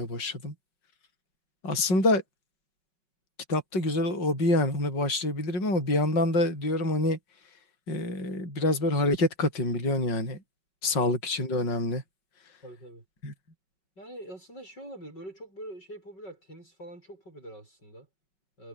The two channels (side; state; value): right; late; 5.3 ms